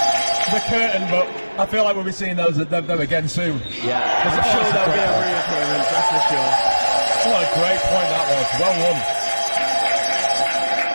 the curtain, but I feel like we'll be seeing them again soon. Yeah, I'm sure there'll be a reappearance, that's for sure. What a great point that was. Well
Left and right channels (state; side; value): inverted; both; correlation -1.00